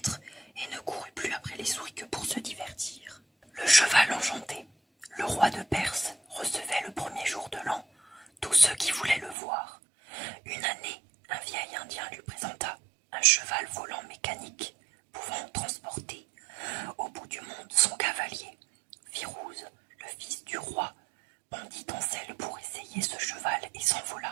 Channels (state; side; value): drops out; left; at 9.3 s